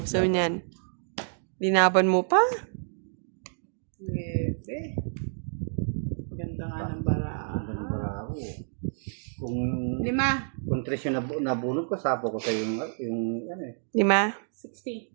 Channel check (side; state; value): left; silent; digital silence